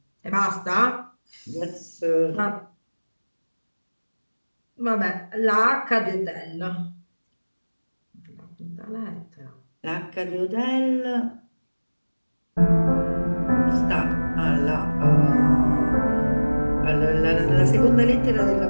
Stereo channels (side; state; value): both; inverted; correlation -1.00